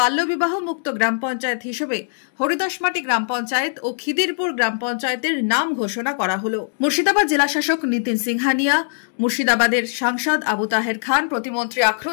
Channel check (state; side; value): silent; right; digital silence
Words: মুক্ত গ্রাম পঞ্চায়েত হিসেবে হরিদাসমাটি গ্রাম পঞ্চায়েত ও খিদিরপুর গ্রাম পঞ্চায়েতের নাম ঘোষণা করা হলো। মুর্শিদাবাদ জেলা শাসক নিতিন সিংহানিয়া, মুর্শিদাবাদের সাংসদ আবু তাহের খান, প্রতিমন্ত্রী